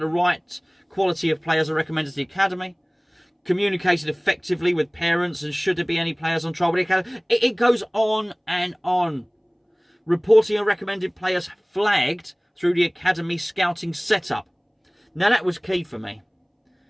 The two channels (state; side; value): identical; both; correlation 1.00